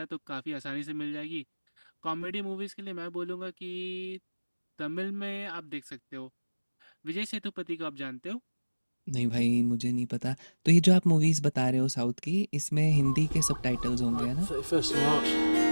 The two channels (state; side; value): inverted; both; correlation -1.00